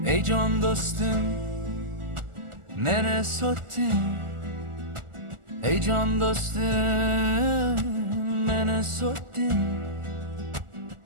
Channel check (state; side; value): late; left; 1.4 ms